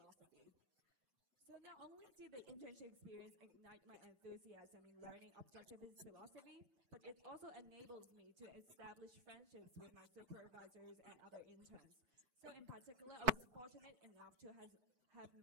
So not only did the internship experience ignite my enthusiasm in learning objectivist philosophy, but it also enables me to establish friendships with my supervisors and other interns. So in particular, I was fortunate enough to have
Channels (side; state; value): left; late; 7.9 ms